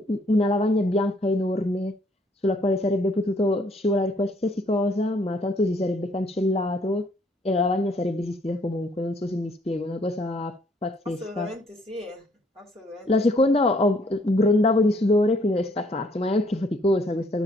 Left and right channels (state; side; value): normal; both; correlation 0.65